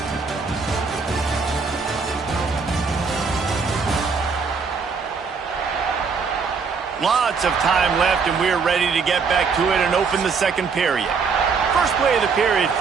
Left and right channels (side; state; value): left; quieter; 5.2 dB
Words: Lots of time left, and we're ready to get back to it and open the 2nd period. First play of the period,